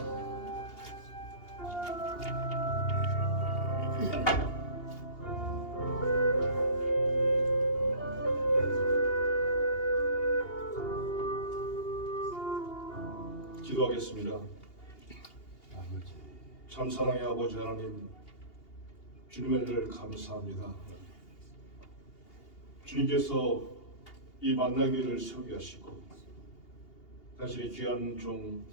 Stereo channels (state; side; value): late; right; 2.8 ms